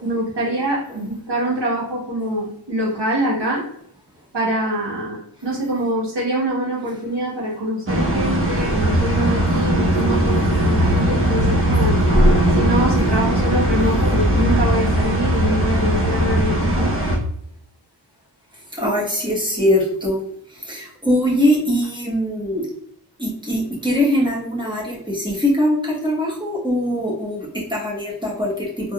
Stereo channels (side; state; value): both; normal; correlation 0.48